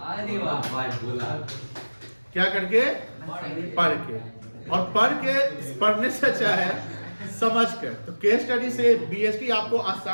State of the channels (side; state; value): both; inverted; correlation -1.00